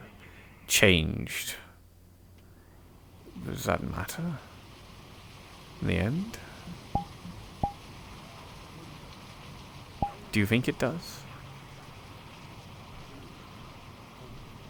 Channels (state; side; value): identical; both; correlation 1.00